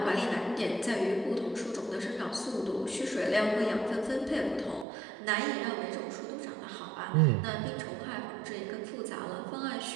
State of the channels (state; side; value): drops out; left; at 4.9 s